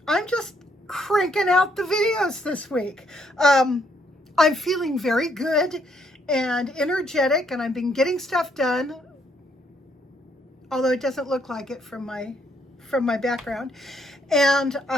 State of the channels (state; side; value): normal; both; correlation 0.71